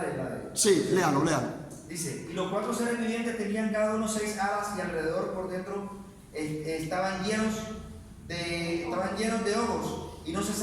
de. Sí, léalo. Dice: y los 4 seres vivientes tenían cada uno 6 alas y alrededor por dentro estaban llenos de ojos y no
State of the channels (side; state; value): both; identical; correlation 1.00